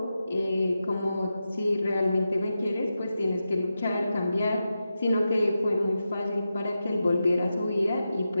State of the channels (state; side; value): inverted; both; correlation -0.90